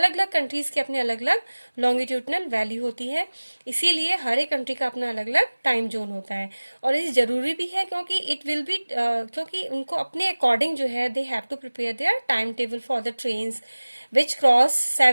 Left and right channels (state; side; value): inverted; both; correlation -1.00